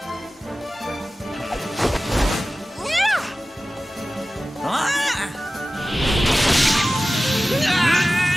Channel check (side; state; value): both; normal; correlation 0.96